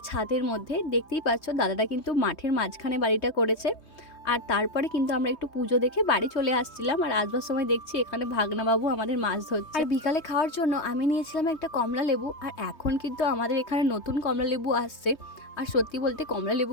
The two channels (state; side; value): late; right; 3.2 ms